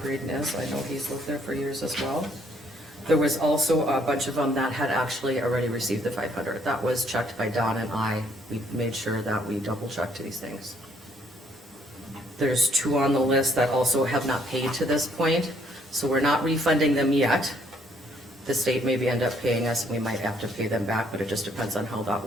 Braden is. I know he's lived there for years as well. There was also a bunch of them that had actually already received the 500. That was checked by Don and I. We made sure that we double checked these things. There's two on the list that also have not paid to this point, so we're not refunding them yet. The state maybe end up paying us, and we might have to pay them back, but it just depends on how that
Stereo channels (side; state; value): both; normal; correlation 0.66